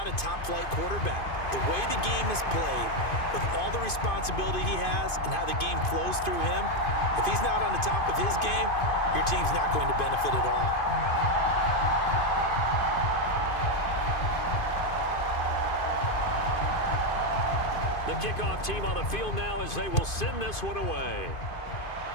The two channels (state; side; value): late; right; 2.5 ms